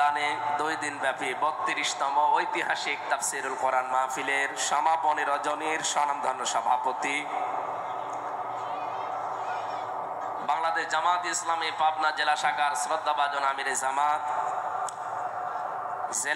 2 দিন ব্যাপী 32তম ঐতিহাসিক তাফসীরুল কোরআন মাহফিলের সমাপনী রজনীর স্বনামধন্য সভাপতি বাংলাদেশ জামাত ইসলামী পাবনা জেলা শাখার শ্রদ্ধাভাজন আমিরে জামাত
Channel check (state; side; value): identical; both; correlation 1.00